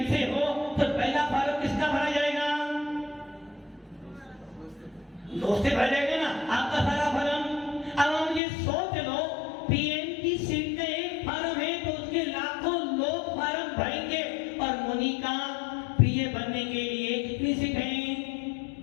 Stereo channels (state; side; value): drops out; right; at 8.4 s